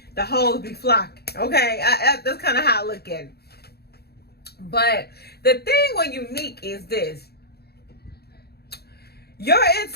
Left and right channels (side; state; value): right; late; 0.46 ms